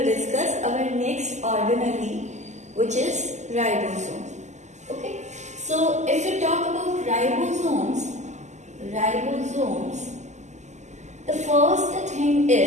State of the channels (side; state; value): left; late; 0.34 ms